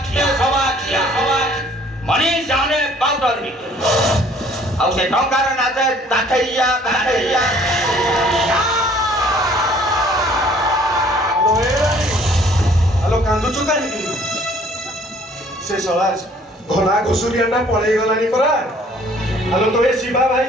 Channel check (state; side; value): normal; both; correlation 0.57